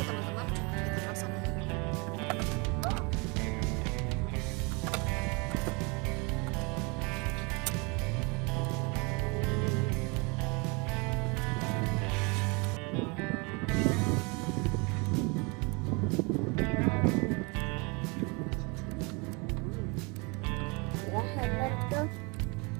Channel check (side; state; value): left; quieter; 29.7 dB